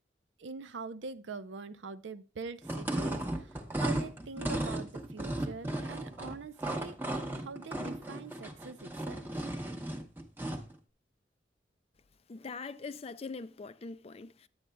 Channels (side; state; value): both; normal; correlation 0.68